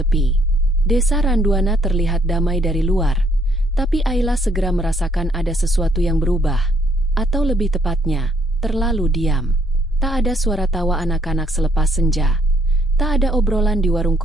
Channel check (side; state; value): both; normal; correlation 0.68